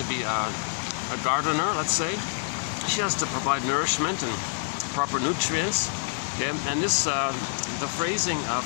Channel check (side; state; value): right; silent; digital silence